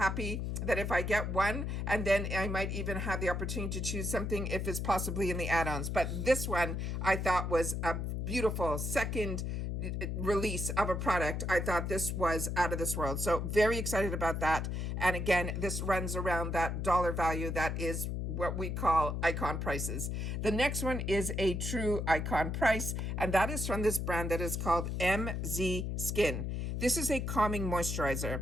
that if I get one, and then I might even have the opportunity to choose something if it's possibly in the add-ons. But this one I thought was a beautiful second release of a product. I thought this was out of this world. So very excited about that. And again, this runs around that dollar value that is what we call icon prices. The next one is a true icon price, and that is from this brand that is called MZ Skin. This is a calming moisturizer.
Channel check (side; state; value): left; noise; hum, 2 dB below the sound